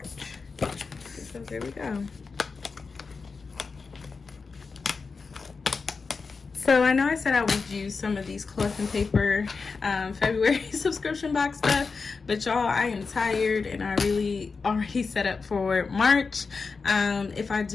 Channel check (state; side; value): quieter; right; 4.7 dB